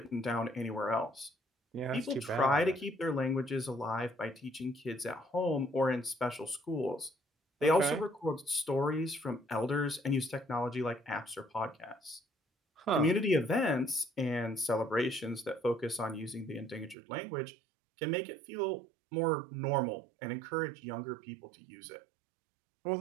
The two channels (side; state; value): left; drops out; at 16.9 s